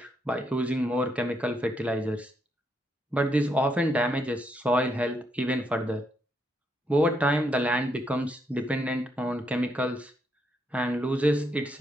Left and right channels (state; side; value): normal; both; correlation 0.77